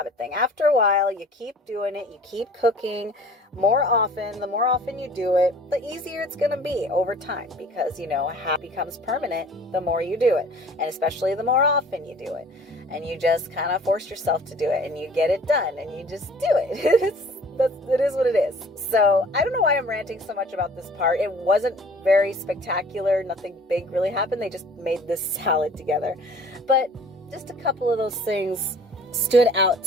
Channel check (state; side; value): normal; both; correlation 0.50